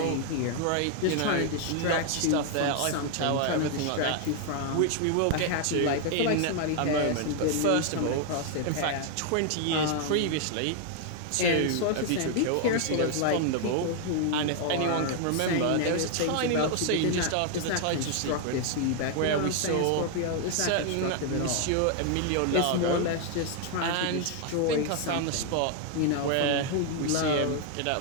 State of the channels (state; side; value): different; both; correlation 0.00